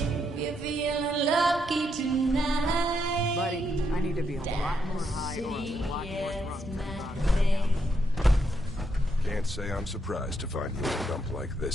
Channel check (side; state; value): both; normal; correlation 0.78